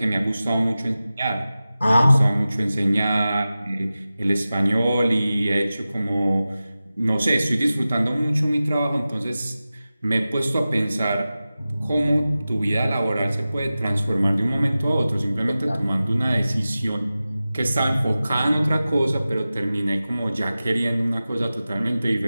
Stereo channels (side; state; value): both; inverted; correlation -0.95